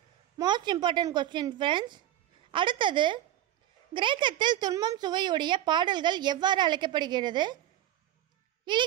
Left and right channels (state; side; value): quieter; left; 12.4 dB